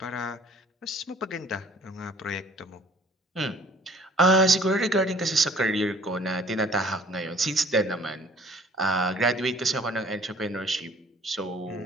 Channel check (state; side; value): normal; both; correlation 0.54